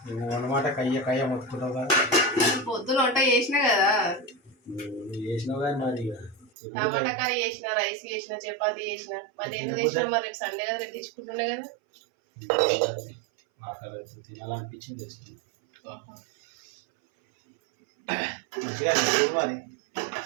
అన్నమాట కయ్య మొత్తుకుంటావు కదా. పొద్దున వంట చేసినా కదా, చేసినావు కానీ మరి టమాటా కర్రీ చేసిన, రైస్ చేసిన, చపాతీ చేసిన. మరి ఎందుకు తెచ్చినా? మరి రేపు సండే కదా, రేపు తెచ్చుకుంటున్నా కదా. ఆకలి అవుతుంది, తినాలనిపించింది తెచ్చుకున్నాను.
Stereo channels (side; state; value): left; drops out; at 6.5 s